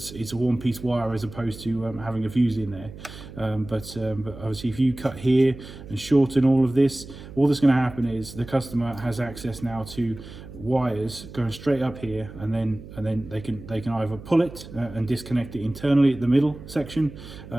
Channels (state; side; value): noise; right; hum, 15 dB below the sound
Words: a one-piece wire as opposed to having a fuse in there. But obviously, if you cut here and shorten all of this, all that's going to happen is the customer has access now to wires going straight up here, and then they can either pull it and disconnect it internally at the middle section,